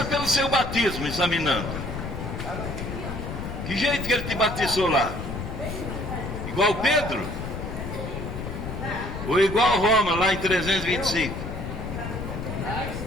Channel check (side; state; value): left; noise; rumble, 6 dB below the sound